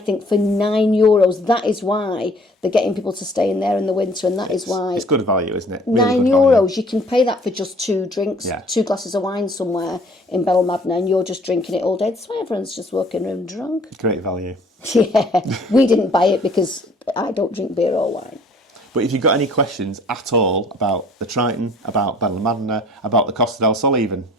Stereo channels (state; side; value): normal; both; correlation 0.55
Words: for €9, that is why they're getting people to stay in there in the winter, and that is why... It's good value, isn't it? Really €9, you can pay that for just 2 drinks, 2 glasses of wine somewhere in Benalmadena, and you're just drinking it all day. That's why everyone's just walking around drunk. Great value. Yeah, we didn't buy it because I don't drink beer or wine. But if you've got any questions at all about the Triton, about Benalmadena, about the Costa del Sol even,